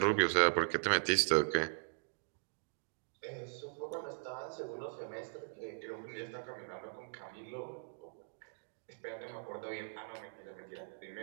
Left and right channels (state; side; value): silent; left; digital silence